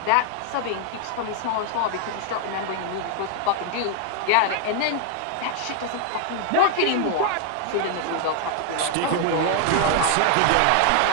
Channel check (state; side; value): different; both; correlation 0.00